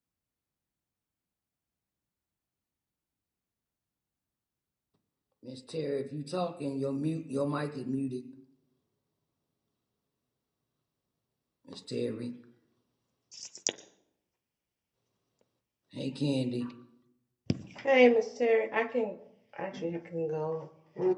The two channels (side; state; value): both; identical; correlation 1.00